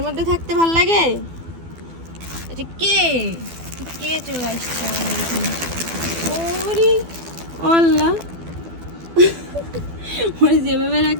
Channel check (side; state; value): left; late; 12 ms